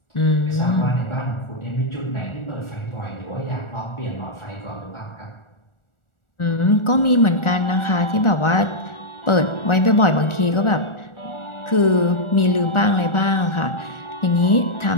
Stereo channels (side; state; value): right; late; 1.4 ms